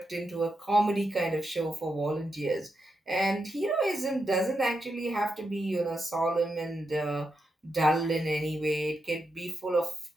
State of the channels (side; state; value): both; normal; correlation 0.85